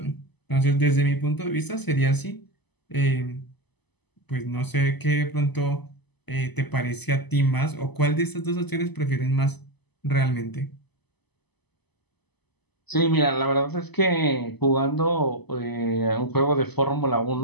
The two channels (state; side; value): late; right; 0.99 ms